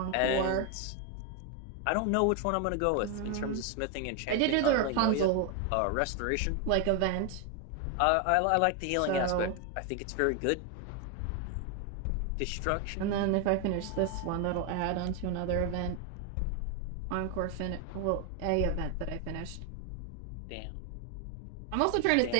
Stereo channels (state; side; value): different; both; correlation 0.01